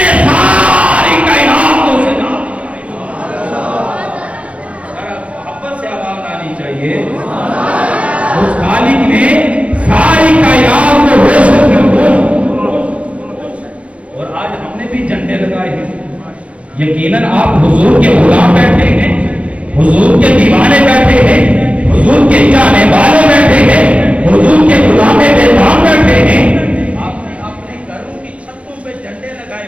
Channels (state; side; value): late; left; 0.063 ms